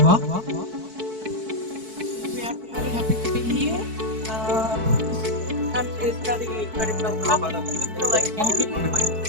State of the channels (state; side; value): late; left; 4.6 ms